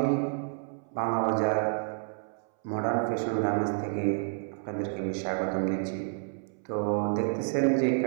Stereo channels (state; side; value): silent; left; 58 dB below the other